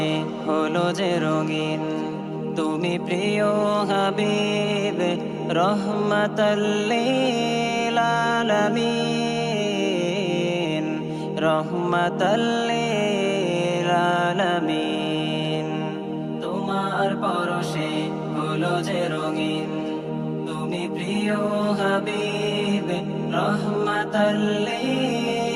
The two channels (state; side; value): identical; both; correlation 1.00